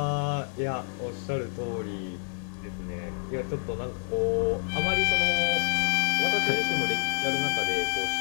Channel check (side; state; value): right; silent; digital silence